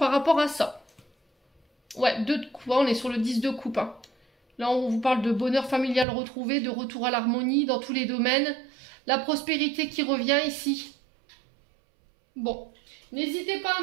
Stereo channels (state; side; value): drops out; left; at 6.1 s